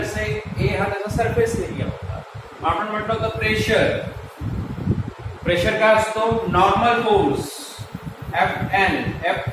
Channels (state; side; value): identical; both; correlation 1.00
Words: से ए हा त्याचा सरफेस एरिया होता. आपण म्हटलं होतं प्रेशर. प्रेशर काय असतो? नॉर्मल फोर्स एफ